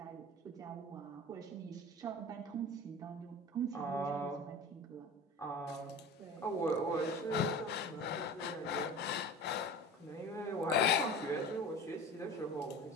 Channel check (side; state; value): both; normal; correlation 0.35